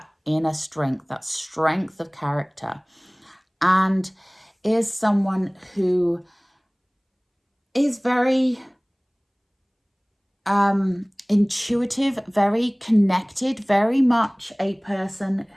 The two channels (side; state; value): both; identical; correlation 1.00